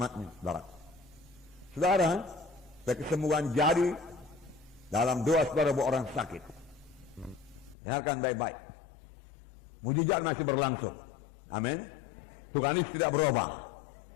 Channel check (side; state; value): right; drops out; at 7.8 s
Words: saudara. Saudara, kesembuhan jadi dalam doa saudara buat orang sakit. Dengarkan baik-baik. Mujizat masih berlangsung. Amin. Tuhan Yesus tidak berubah.